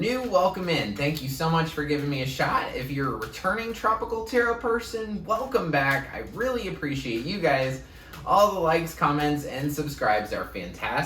welcome in. Thank you so much for giving me a shot. If you're a returning Tropical Tarot person, welcome back. I really appreciate you guys. All the likes, comments, and subscribes are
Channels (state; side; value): identical; both; correlation 1.00